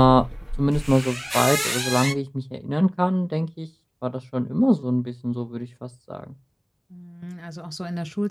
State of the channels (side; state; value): both; identical; correlation 1.00